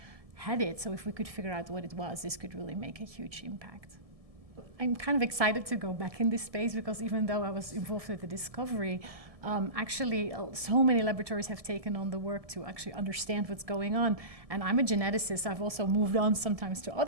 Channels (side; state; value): left; late; 1.7 ms